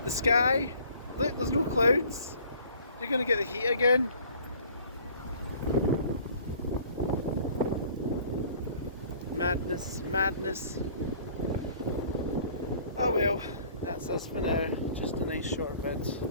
The sky, look, there's no clouds. You're going to get the heat again. Madness, madness. Oh well, that's us for now. Just a nice short vid.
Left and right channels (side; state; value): both; inverted; correlation -0.53